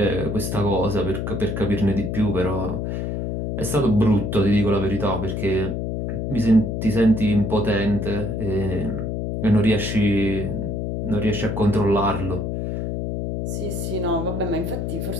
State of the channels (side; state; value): left; noise; hum, 3 dB below the sound